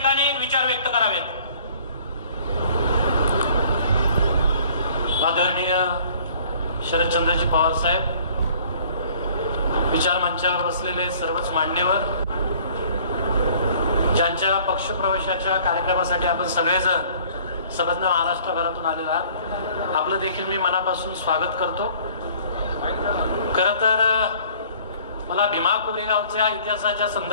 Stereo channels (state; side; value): inverted; both; correlation -0.54